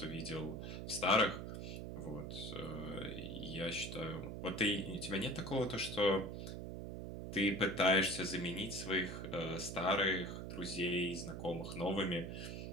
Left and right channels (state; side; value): noise; right; hum, 6 dB below the sound